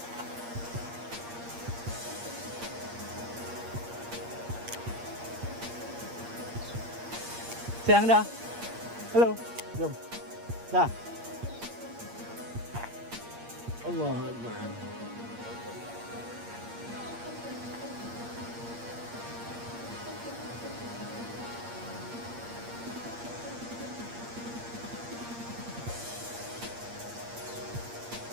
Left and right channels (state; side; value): late; left; 8.6 ms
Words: Sayang dah. Halo. Jom. Dah. Allah Akbar.